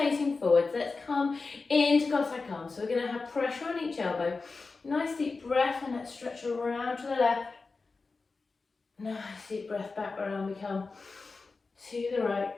forwards. Let's come into Cossack arms. So we're going to have pressure on each elbow. Nice deep breath and let's stretch around to the left. Nice deep breath back around we come to the right.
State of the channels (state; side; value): quieter; right; 4.1 dB